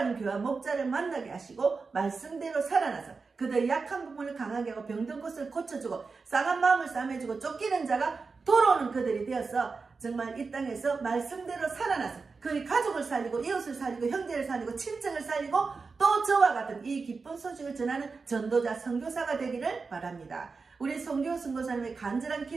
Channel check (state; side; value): quieter; left; 4.5 dB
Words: 교회 목자를 만나게 하시고 말씀대로 살아나서 그들의 약한 부분을 강하게 하고 병든 곳을 고쳐주고 싸간 마음을 싸매주고 쫓기는 자가 돌아오는 그들이 되어서 정말 이 땅에서 말씀대로 살아나서 그의 가족을 살리고 이웃을 살리고 형제를 살리고 친척을 살리고 또 저와 같은 이 기쁜 소식을 전하는 전도자 선교사가 되기를 바랍니다. 우리 송교 선교사님의 간절한